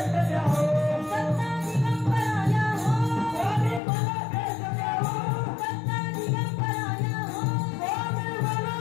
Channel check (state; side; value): drops out; right; at 3.8 s